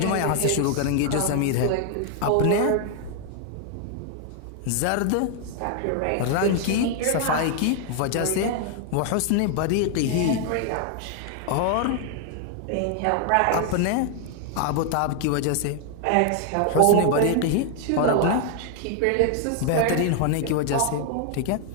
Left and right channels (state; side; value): different; both; correlation 0.00